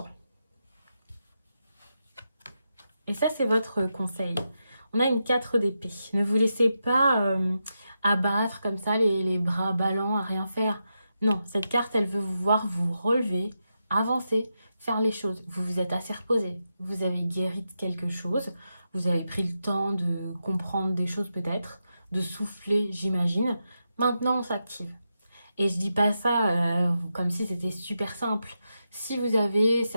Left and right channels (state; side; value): inverted; both; correlation -0.87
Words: Et ça, c'est votre conseil. On a une 4 d'épée. Ne vous laissez pas abattre comme ça, les bras ballants à rien faire. Non, cette carte, elle veut vous voir vous relever, avancer, faire les choses. Vous vous êtes assez reposé. Vous avez guéri de quelque chose. Vous avez pris le temps de comprendre des choses peut-être, de souffler, j'imagine. Maintenant, on s'active. Et je dis pas ça comme si c'était super simple. Si vous avez